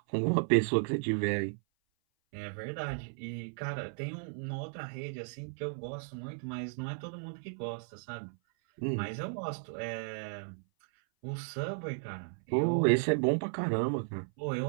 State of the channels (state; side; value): silent; left; 55 dB below the other